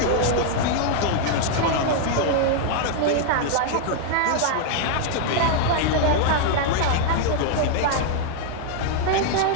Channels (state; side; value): different; both; correlation 0.00